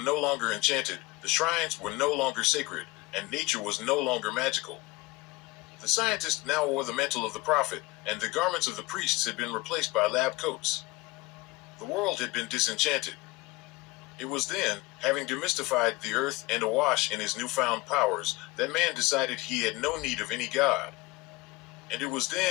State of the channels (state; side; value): quieter; right; 21.9 dB